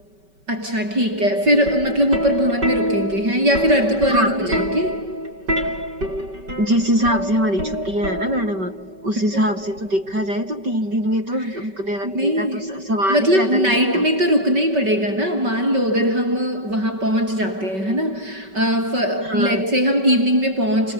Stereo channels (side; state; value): left; late; 5.2 ms